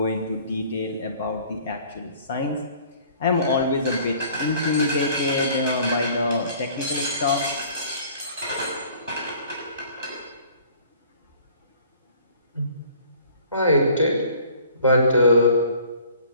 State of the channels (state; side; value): inverted; both; correlation -0.53